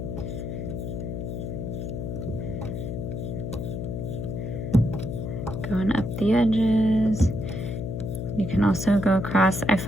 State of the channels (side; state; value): left; noise; hum, 4 dB below the sound